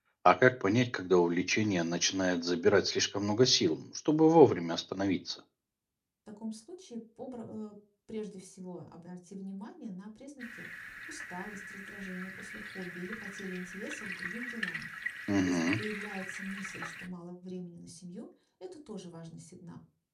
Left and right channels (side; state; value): both; identical; correlation 1.00